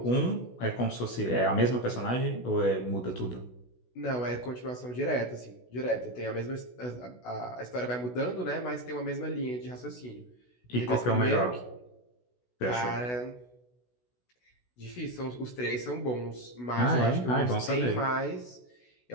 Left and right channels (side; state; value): right; late; 16 ms